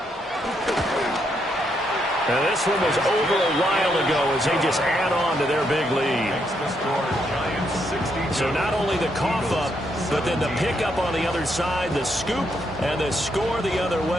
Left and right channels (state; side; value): normal; both; correlation 0.77